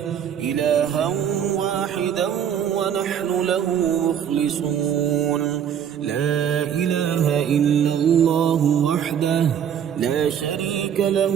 إلها واحدا ونحن له مخلصون لا إله إلا الله وحده لا شريك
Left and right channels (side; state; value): left; quieter; 8.8 dB